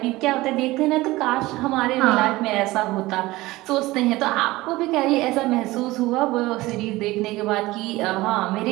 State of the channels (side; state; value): left; quieter; 19.1 dB